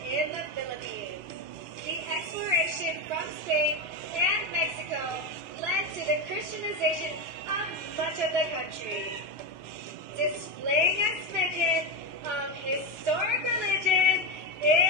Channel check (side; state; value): both; normal; correlation 0.14